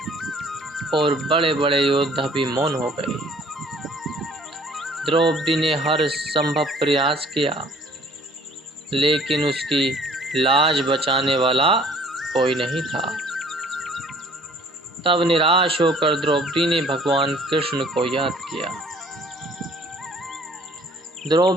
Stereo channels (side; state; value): both; normal; correlation 0.55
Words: और बड़े बड़े योद्धा भी मौन हो गए। द्रौपदी ने हर संभव प्रयास किया, लेकिन उसकी लाज बचाने वाला कोई नहीं था। तब निराश होकर द्रौपदी ने भगवान कृष्ण को याद किया।